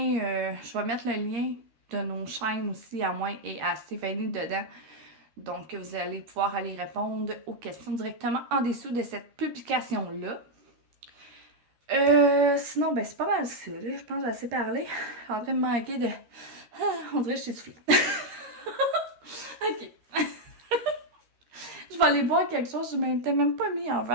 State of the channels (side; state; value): left; late; 13 ms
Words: Je vais mettre le lien de nos chaînes aussi à moi et à Stéphanie dedans. Donc, vous allez pouvoir aller répondre aux questions directement en dessous de cette publication-là. Sinon, ben c'est pas mal ça, là. Je pense que j'ai assez parlé. Je suis en train de me manquer de... on dirait que je suis soufflée. Ok. Je vais aller boire quelque chose. Je m'étais même pas mis un